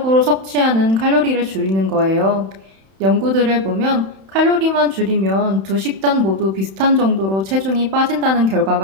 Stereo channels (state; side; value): late; left; 31 ms